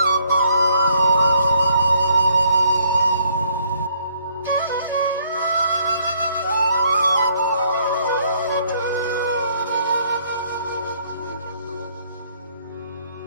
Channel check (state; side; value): inverted; both; correlation -0.66